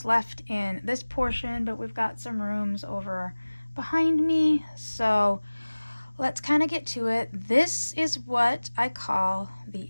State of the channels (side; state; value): both; inverted; correlation -1.00